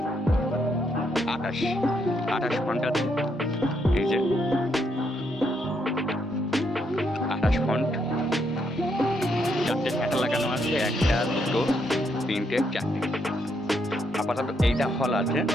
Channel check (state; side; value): normal; both; correlation 0.76